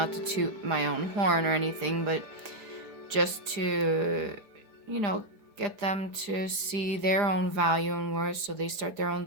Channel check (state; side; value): late; left; 4.9 ms